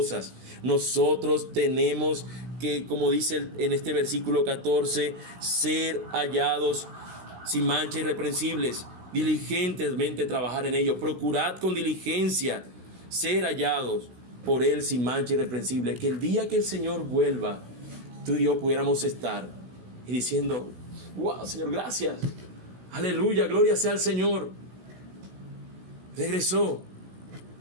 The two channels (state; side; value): late; left; 16 ms